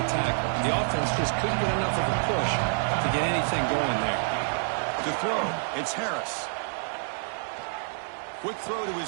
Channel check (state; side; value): silent; left; digital silence